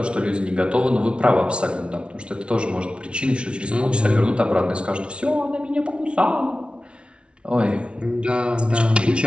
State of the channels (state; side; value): late; left; 0.058 ms